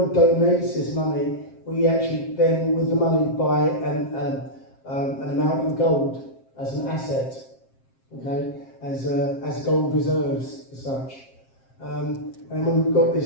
donates this money. We actually then, with the money, buy an amount in gold as an asset, okay? As gold reserves, as such. And when we've got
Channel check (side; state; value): right; late; 7.5 ms